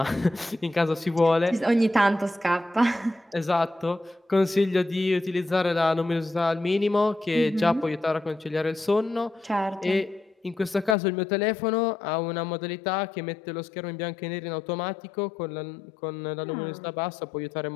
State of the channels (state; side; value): drops out; right; at 11.0 s